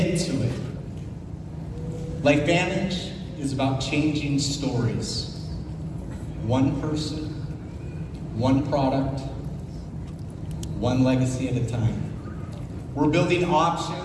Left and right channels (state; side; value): identical; both; correlation 1.00